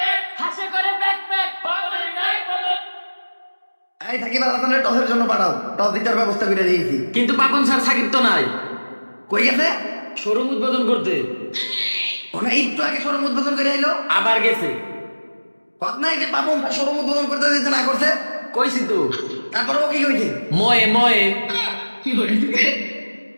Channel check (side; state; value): both; inverted; correlation -1.00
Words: হাসে করে ব্যাক ব্যাক। এই সাকিব আল হাসানের টসের জন্য পাঠাও, টস জিতার ব্যবস্থা করে দিয়েছি। কিন্তু পাপন স্যার সাকিব তো নাই, কই গেছে? শোরুম উদ্বোধন করতে ওনা একটু আগে শোরুম উদ্বোধন করে এলো, আবার গেছে। কথা নাই যে পাপন শোরুম উদ্বোধন করতে দিতে না করছে। কইছি তো তারপরে ও কি কইছে? ময়ে ময়ে